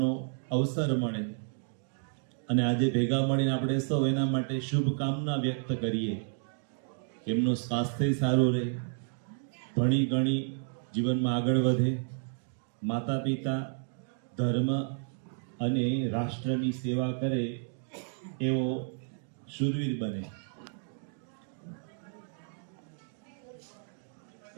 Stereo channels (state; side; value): silent; left; 57 dB below the other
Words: અવસર મળે અને આજે ભેગા મળીને આપણે સૌ એના માટે શુભકામના વ્યક્ત કરીએ. એમનું સ્વાસ્થ્ય સારું રહે, ભણી ગણી જીવનમાં આગળ વધે, માતા પિતા, ધર્મ અને રાષ્ટ્રની સેવા કરે એવો શૂરવીર બને.